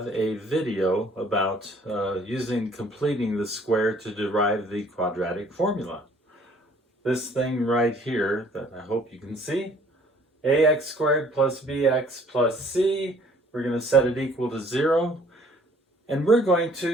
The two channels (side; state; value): both; normal; correlation 0.58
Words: a video about completing the square to derive the quadratic formula. This thing right here that I hope you can see, ax squared plus bx plus c, we're going to set it equal to 0. And we're going